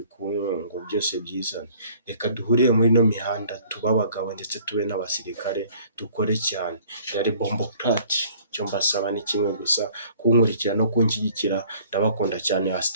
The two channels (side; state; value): both; inverted; correlation -0.54